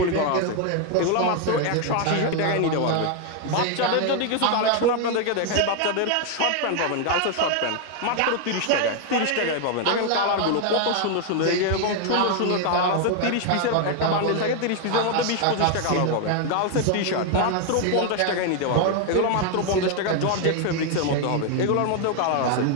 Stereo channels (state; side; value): different; both; correlation 0.01